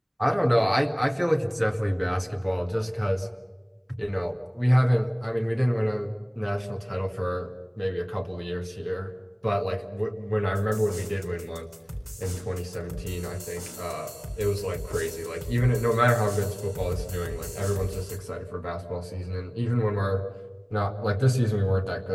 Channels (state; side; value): identical; both; correlation 1.00